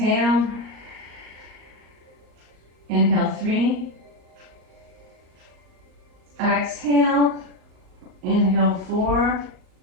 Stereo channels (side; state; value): left; late; 38 ms